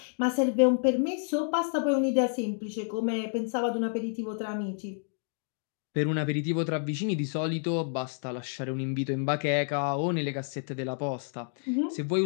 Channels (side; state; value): right; silent; 58 dB below the other